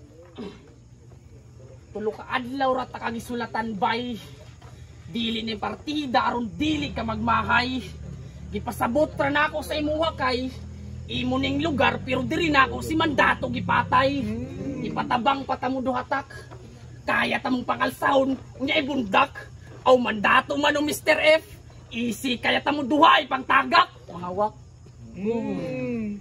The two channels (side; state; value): both; identical; correlation 1.00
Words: Tulo ka adlaw ra ta kagisulatan bay. Dili ni partida aron dili ka magmahay. Gipasabot ra nako sa imuha kay imo ning lugar pero diri nako si mandato gipatay. Ipatabang patamudo hatak. Kaya tamong pangalsahon unya ibundak. Aw mandato man o Mr. F. Easy kaya tamo duhay pangtagak. Mahawak.